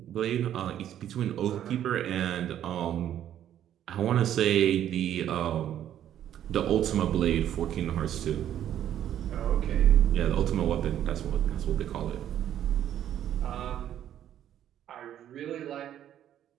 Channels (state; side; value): quieter; left; 10.9 dB